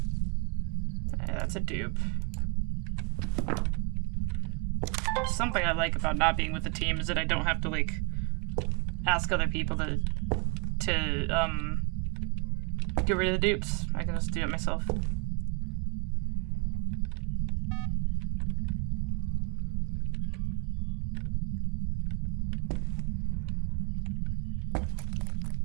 That's a dupe. Something I like about not being with the team is that I don't have to, like, ask other people to get rid of the dupes. I can just do it myself.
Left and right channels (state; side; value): quieter; left; 32.6 dB